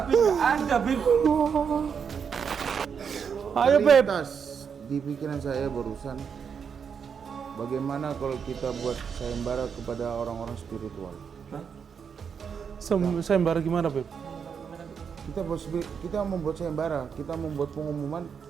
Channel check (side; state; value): left; quieter; 6.8 dB